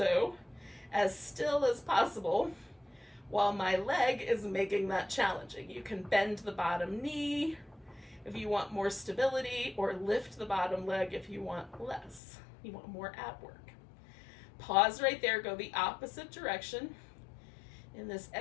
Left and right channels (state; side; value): drops out; right; at 12.2 s